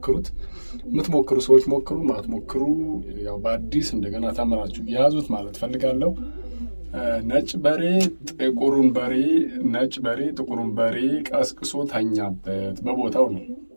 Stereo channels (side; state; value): both; inverted; correlation -1.00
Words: የምትሞክሩ ሰዎች ሞክሩ፣ ማትሞክሩ ያው በአዲስ እንደገና ተምራችሁ ያዙት ማለት ፈልጋለሁ። ነጭ በሬ ጥቁሩን በሬ ቀስቅሶ ተኛበት። በቦታው ነው።